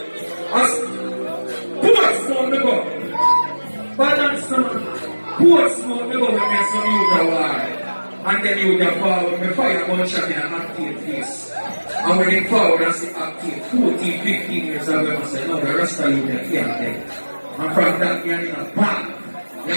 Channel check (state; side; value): inverted; both; correlation -1.00